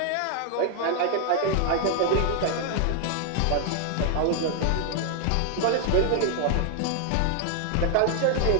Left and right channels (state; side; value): different; both; correlation 0.00